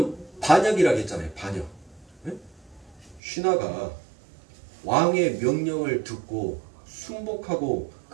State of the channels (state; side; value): drops out; left; at 3.2 s